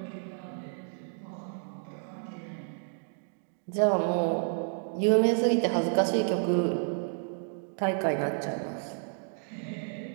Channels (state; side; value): silent; left; 57 dB below the other